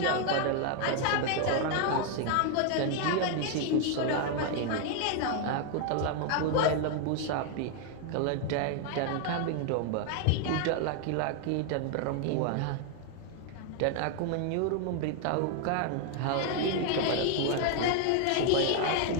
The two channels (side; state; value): both; different; correlation 0.00